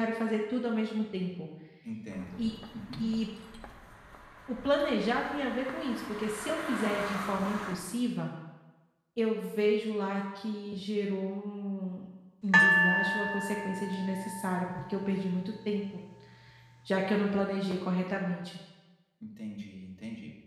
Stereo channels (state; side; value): identical; both; correlation 1.00